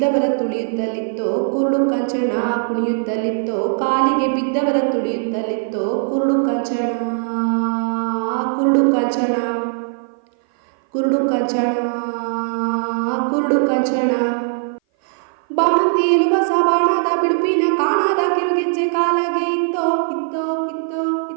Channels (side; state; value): left; silent; 57 dB below the other